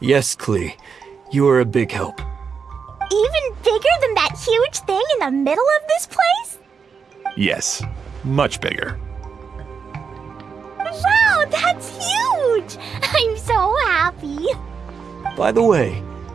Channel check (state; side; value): quieter; left; 6.0 dB